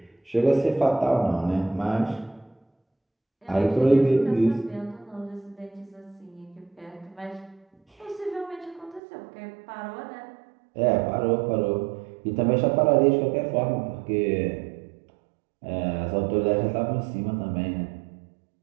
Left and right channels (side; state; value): left; drops out; at 9.0 s